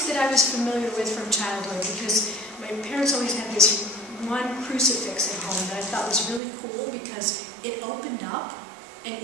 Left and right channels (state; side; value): drops out; left; at 6.4 s